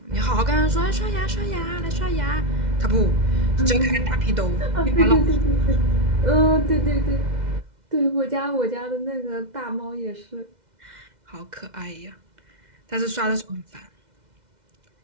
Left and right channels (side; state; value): left; late; 2.1 ms